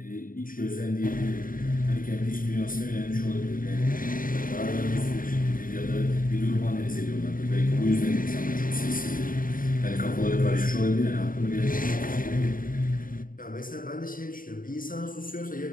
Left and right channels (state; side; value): late; right; 0.40 ms